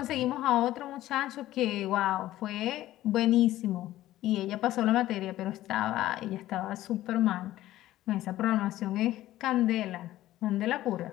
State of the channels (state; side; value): quieter; right; 14.8 dB